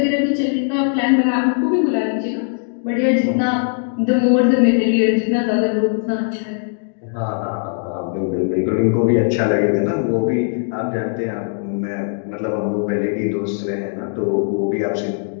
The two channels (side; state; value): right; silent; 66 dB below the other